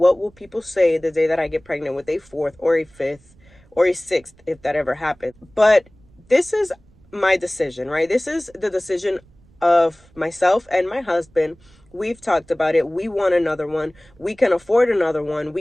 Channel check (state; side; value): noise; right; rumble, 29 dB below the sound